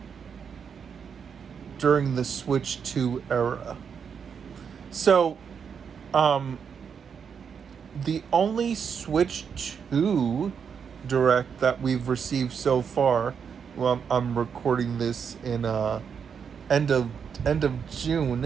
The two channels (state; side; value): quieter; left; 6.8 dB